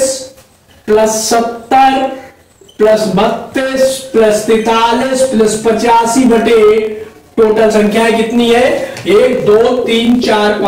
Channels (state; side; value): identical; both; correlation 1.00